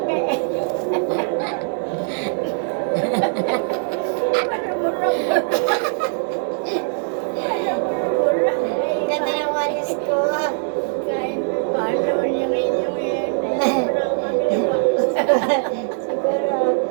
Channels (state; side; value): silent; left; 65 dB below the other